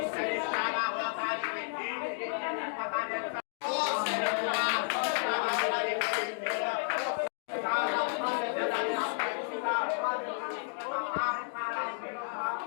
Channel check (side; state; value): right; silent; digital silence